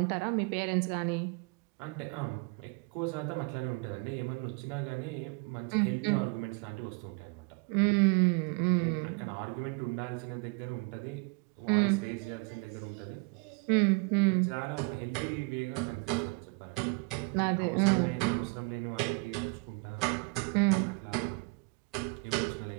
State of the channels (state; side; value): quieter; left; 31.0 dB